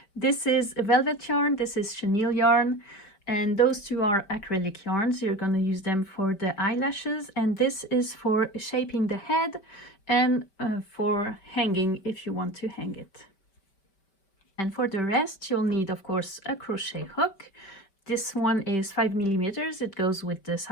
This is a velvet yarn, this is chenille yarn, and those two are acrylic yarns. You're gonna use them for the eyelashes, and this is for shaping the head and for hanging if you want to hang it. And for the rest, you'll need, of course, a crochet hook. This one is 5 millimeters. It goes with the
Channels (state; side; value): late; right; 5.2 ms